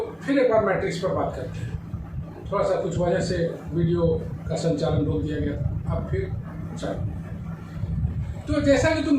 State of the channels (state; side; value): identical; both; correlation 1.00